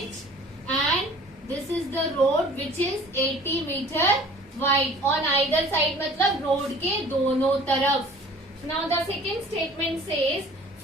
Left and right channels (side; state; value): both; normal; correlation 0.48